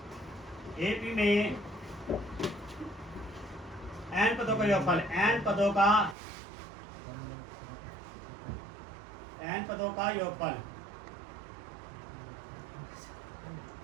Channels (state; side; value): drops out; left; at 6.2 s